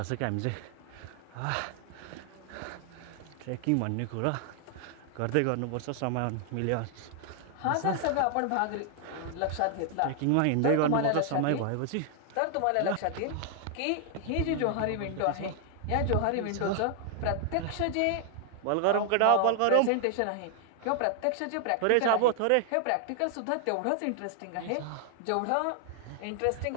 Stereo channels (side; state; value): both; different; correlation 0.00